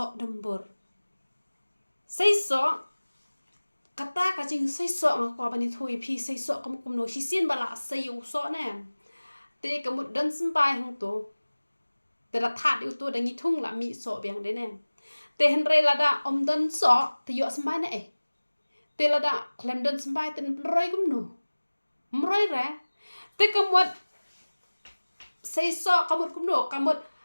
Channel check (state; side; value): inverted; both; correlation -1.00